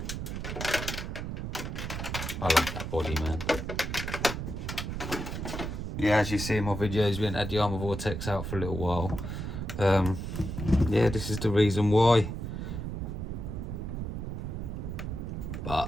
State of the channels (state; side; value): noise; right; rumble, 5 dB below the sound